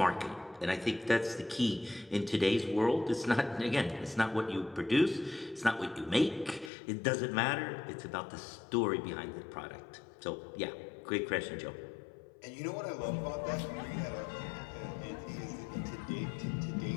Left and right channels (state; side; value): drops out; right; at 6.7 s